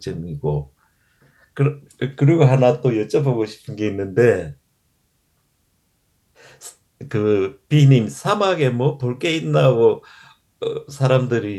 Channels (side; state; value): both; identical; correlation 1.00